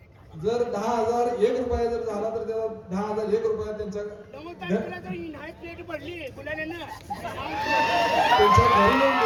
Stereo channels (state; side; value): identical; both; correlation 1.00